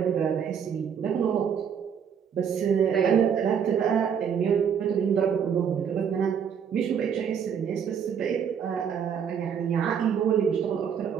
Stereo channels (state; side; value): quieter; left; 7.6 dB